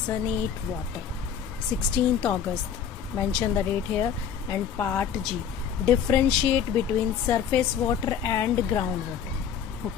8 water, 16th August, mention the date here. And part G, differentiate between surface water and ground water.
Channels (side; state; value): right; quieter; 8.1 dB